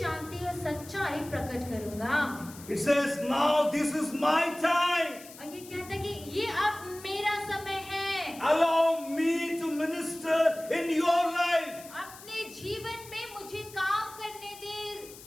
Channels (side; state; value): left; noise; hiss, 17 dB below the sound